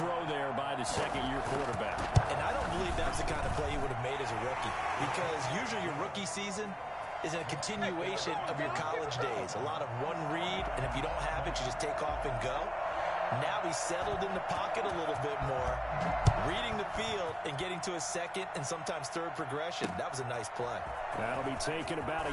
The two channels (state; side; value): identical; both; correlation 1.00